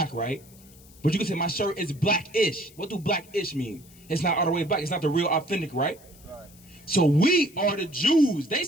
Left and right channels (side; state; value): left; noise; hiss, 24 dB below the sound